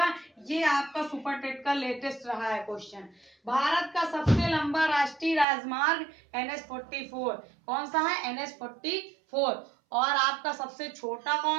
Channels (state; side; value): drops out; left; at 5.5 s